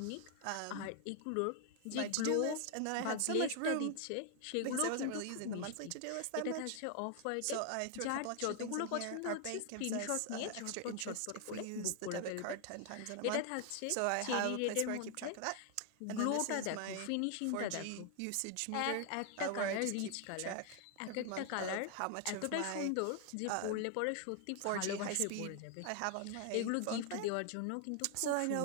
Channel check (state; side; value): different; both; correlation 0.00